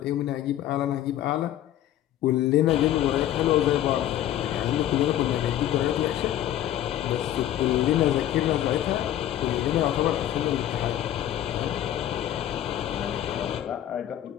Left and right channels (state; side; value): quieter; right; 12.3 dB